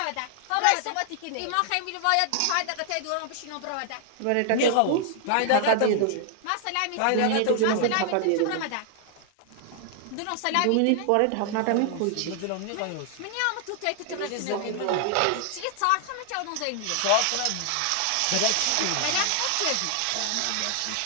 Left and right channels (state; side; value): different; both; correlation 0.00